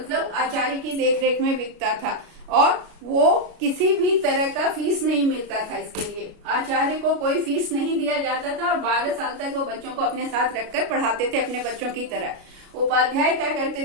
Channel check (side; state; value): left; late; 33 ms